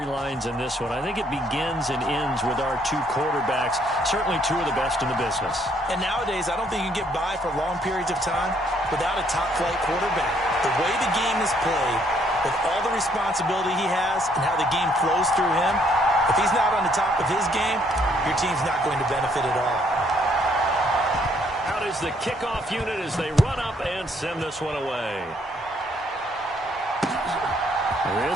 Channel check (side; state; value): both; normal; correlation 0.67